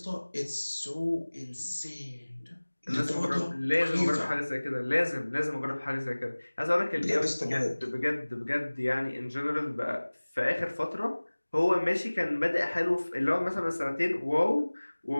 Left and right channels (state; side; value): inverted; both; correlation -1.00